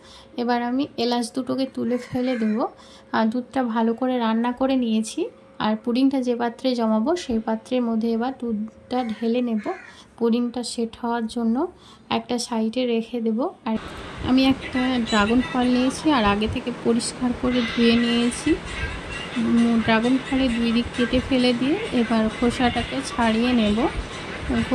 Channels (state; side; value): identical; both; correlation 1.00